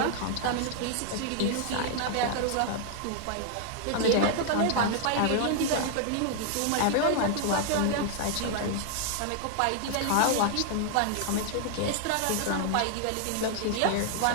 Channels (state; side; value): different; both; correlation 0.00